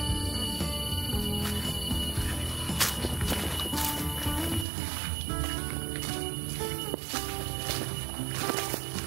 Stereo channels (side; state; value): left; drops out; at 4.7 s